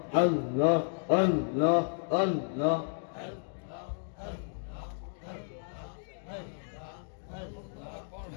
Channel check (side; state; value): right; silent; digital silence